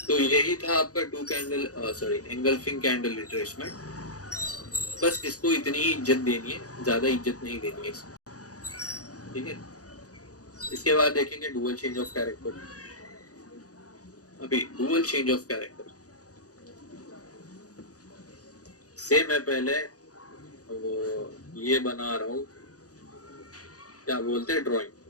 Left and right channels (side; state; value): right; late; 0.67 ms